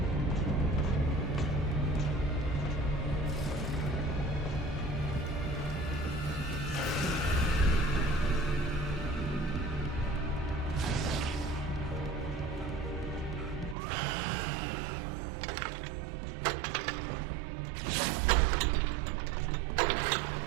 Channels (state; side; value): drops out; left; at 13.8 s